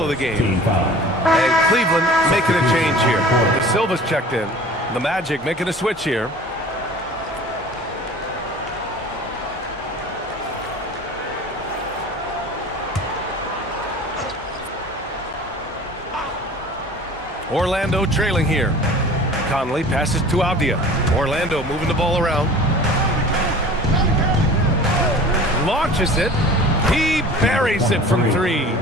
of the game. And Cleveland making a change here. De Silva's checked in. The Magic making a switch here. Orlando trailing here. Conley passes to Avdia. Orlando moving the ball around. Launches it. He buries it from 3.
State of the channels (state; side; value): normal; both; correlation 0.43